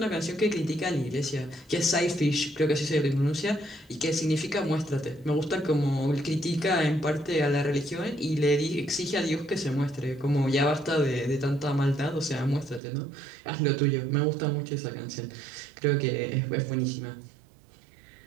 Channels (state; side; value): drops out; left; at 12.8 s